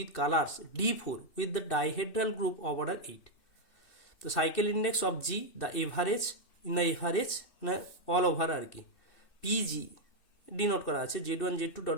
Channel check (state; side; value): late; right; 2.6 ms